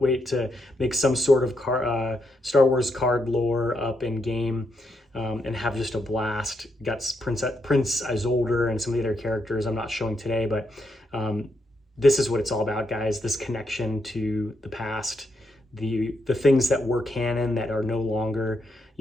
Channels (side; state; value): both; normal; correlation 0.80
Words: to make some sort of Star Wars card lore up in game, and have just a blast. Got Prince Isolde and some of the other characters I'm not showing today, but this is what it's all about, guys. This connection to the past, the things that were canon that are no longer,